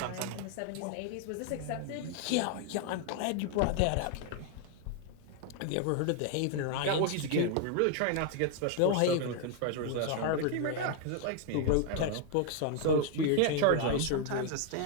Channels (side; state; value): both; different; correlation 0.00